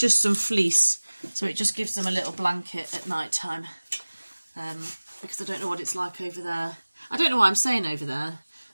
some fleece, so it just gives them a little blanket at night time. Because I don't know what it's like over there. I don't know why I'm saying over there,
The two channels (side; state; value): both; inverted; correlation -1.00